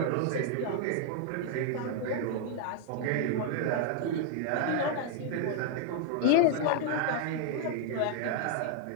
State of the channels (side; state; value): both; different; correlation 0.00